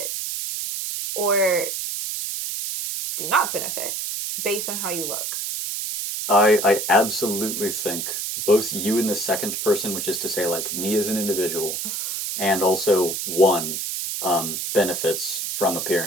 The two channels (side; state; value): right; noise; hiss, 3 dB below the sound